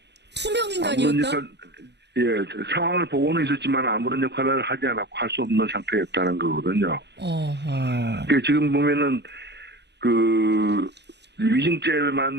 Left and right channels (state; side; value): late; left; 0.50 ms